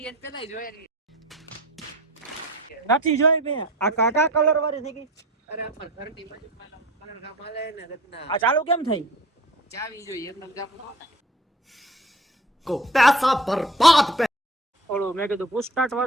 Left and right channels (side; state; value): both; normal; correlation 0.43